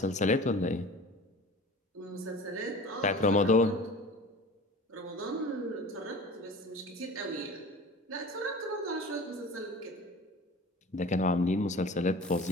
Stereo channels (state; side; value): normal; both; correlation 0.39